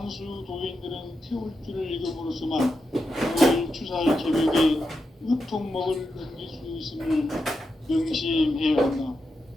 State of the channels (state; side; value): normal; both; correlation 0.87